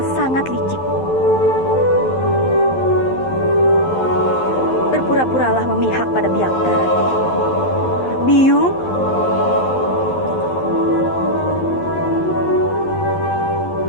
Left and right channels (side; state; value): right; late; 11 ms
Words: sangat licik. Berpura-puralah memihak pada Byakta, Rati. Biyung?